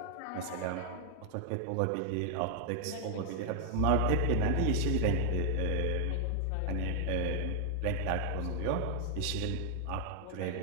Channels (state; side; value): different; both; correlation 0.00